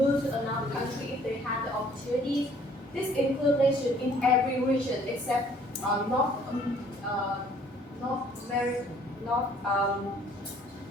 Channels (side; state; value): both; normal; correlation 0.58